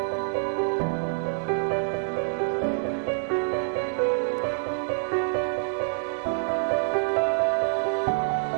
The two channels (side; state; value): left; silent; digital silence